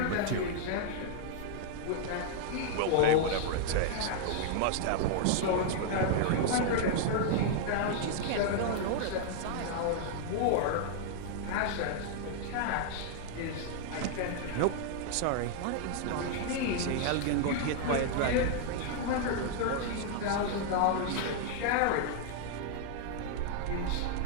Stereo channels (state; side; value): different; both; correlation 0.00